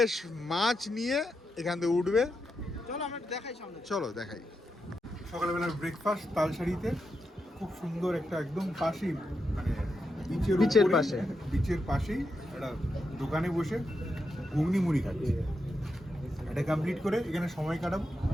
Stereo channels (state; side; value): normal; both; correlation 0.86